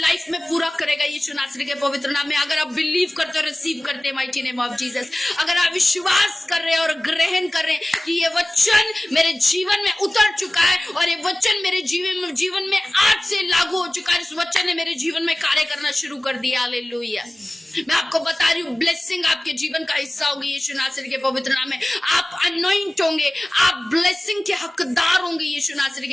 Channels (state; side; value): normal; both; correlation 0.97